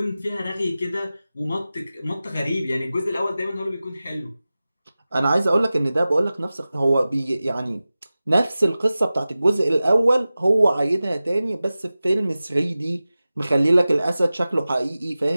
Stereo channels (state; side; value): inverted; both; correlation -0.96